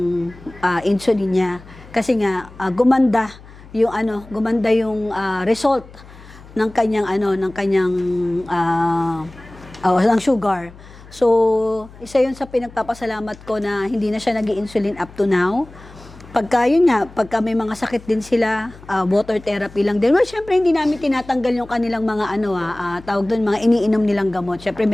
insulin niya. Kasi nga, gumanda yung result ng kanyang ng sugar. So, isa 'yun sa pinagpapasalamat ko na hindi na siya nag-i-insulin up to now. Pagka may mga sakit din sila, water therapy lang din. Well, syempre hindi namin tinatanggal yung kanilang mga tawag doon, mga iniinom nilang gamot. Syempre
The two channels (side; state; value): left; noise; hum, 20 dB below the sound